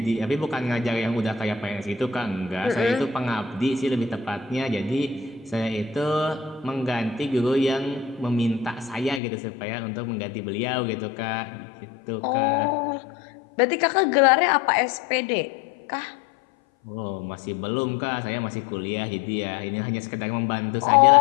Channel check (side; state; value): right; drops out; at 9.2 s